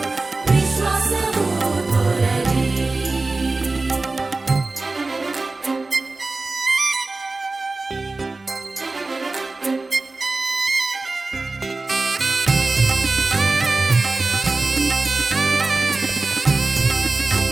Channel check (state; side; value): quieter; left; 3.4 dB